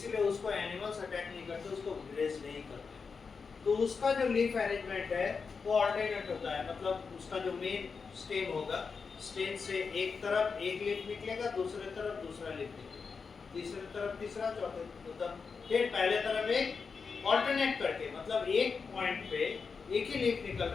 उसको एनिमल्स अटैक नहीं करते, उसको ग्रेज नहीं करते। तो उसका जो लीफ अरेंजमेंट है वो ऑल्टरनेट होता है, मतलब उसका जो मेन स्टेम होगा, स्टेम से एक तरफ एक लीफ निकलेगा, दूसरे तरफ दूसरा लीफ निकलेगा, तीसरे तरफ तीसरा, चौथे मतलब फिर पहले तरफ एक ऑल्टरनेट करके, मतलब एक पॉइंट पे एक ही लीफ निकल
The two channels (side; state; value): right; quieter; 5.2 dB